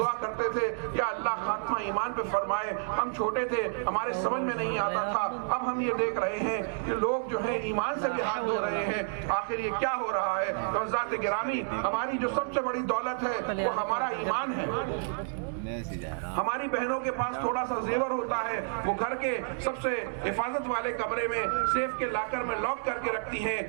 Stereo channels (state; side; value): silent; left; digital silence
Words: کرتے تھے یا اللہ خاتمہ ایمان پہ فرمائے. ہم چھوٹے تھے, ہمارے سمجھ میں نہیں آتا تھا. اب ہم یہ دیکھ رہے ہیں کہ لوگ جو ہیں ایمان سے بھی ہاتھ دھو رہے ہیں. آخر یہ کیا ہو رہا ہے؟ حضرات گرامی, ہماری جو سب سے بڑی دولت ہے وہ ہمارا ایمان ہے. ہماری بہنوں کے پاس تھوڑا سا زیور ہوتا ہے, وہ گھر کے سب سے حفاظت والے کمرے میں سیف کے لاکر میں لاک کر کے رکھتی ہیں.